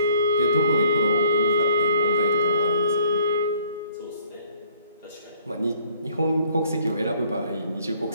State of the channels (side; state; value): both; inverted; correlation -0.60